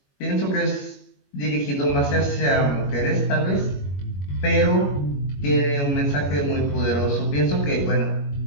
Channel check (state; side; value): late; right; 21 ms